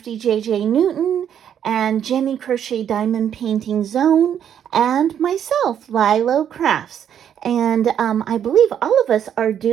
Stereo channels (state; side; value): quieter; left; 9.2 dB